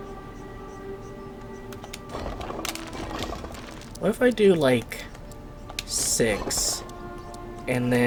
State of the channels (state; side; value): identical; both; correlation 1.00